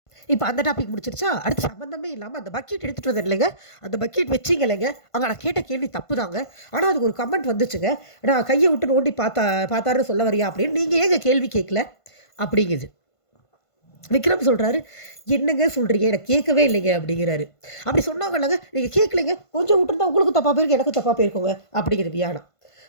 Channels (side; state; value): right; late; 1.5 ms